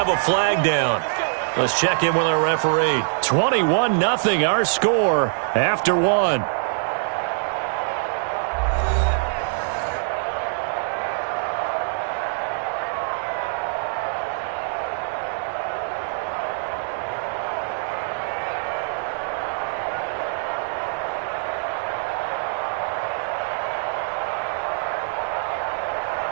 a flag down. Let's check in with our referee. 21-0 our score after 1.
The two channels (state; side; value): silent; left; 63 dB below the other